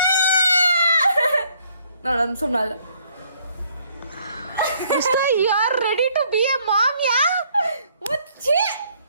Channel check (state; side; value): inverted; both; correlation -0.65